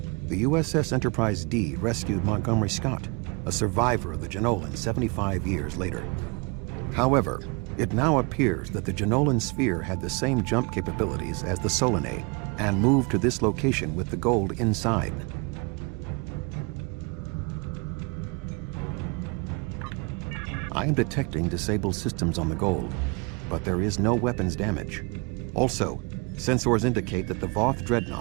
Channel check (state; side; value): quieter; left; 30.0 dB